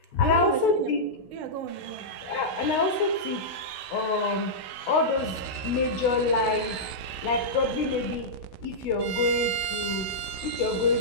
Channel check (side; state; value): right; late; 16 ms